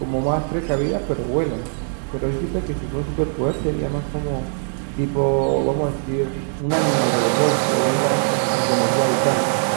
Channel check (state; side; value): silent; left; digital silence